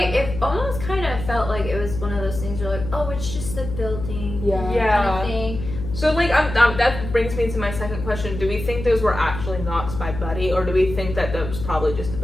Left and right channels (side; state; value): left; noise; hum, 8 dB below the sound